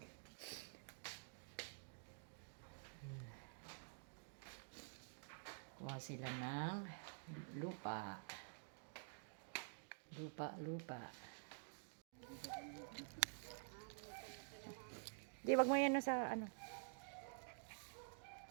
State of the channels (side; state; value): left; silent; digital silence